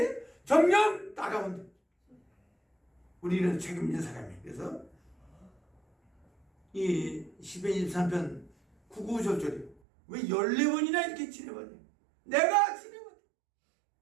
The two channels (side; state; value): left; drops out; at 9.8 s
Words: 정녕 따라온대. 우리는 책임진 사람이에요. 그래서 이 시편 23편 9, 10절에 왜 14번이나 이렇게 지내봤냐? 내가 지내봤냐?